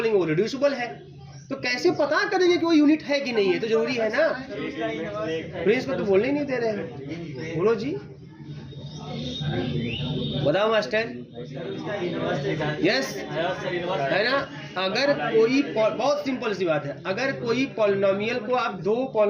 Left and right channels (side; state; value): both; identical; correlation 1.00